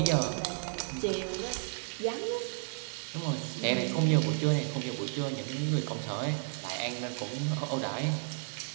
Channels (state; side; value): silent; left; 56 dB below the other